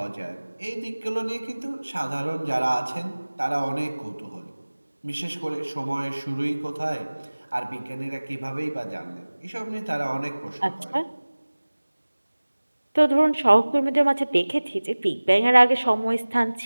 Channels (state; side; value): inverted; both; correlation -1.00